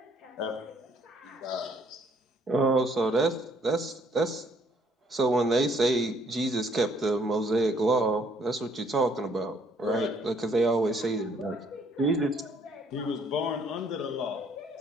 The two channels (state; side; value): normal; both; correlation 0.64